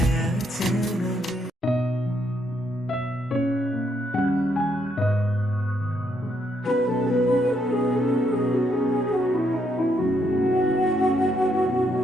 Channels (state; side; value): normal; both; correlation 0.75